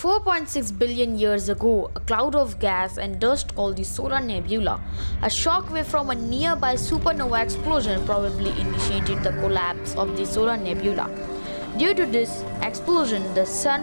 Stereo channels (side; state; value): both; inverted; correlation -1.00